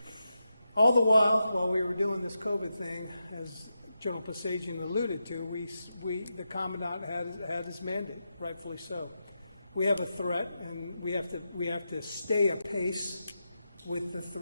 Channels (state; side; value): inverted; both; correlation -0.88